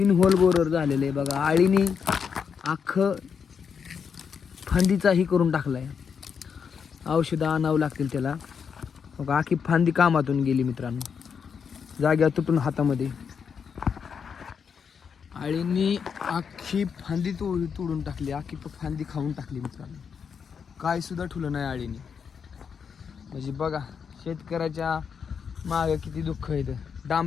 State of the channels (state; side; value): quieter; right; 6.6 dB